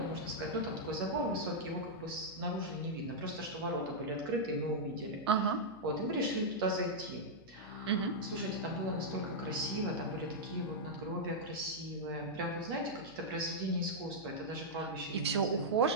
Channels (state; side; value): noise; left; hum, 23 dB below the sound